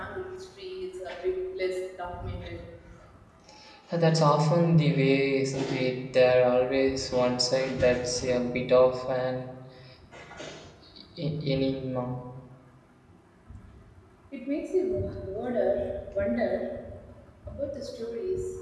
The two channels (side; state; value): both; identical; correlation 1.00